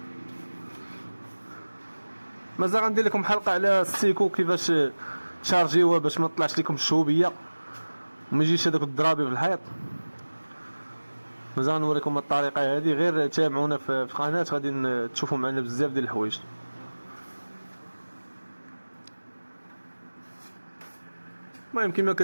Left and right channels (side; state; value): both; inverted; correlation -1.00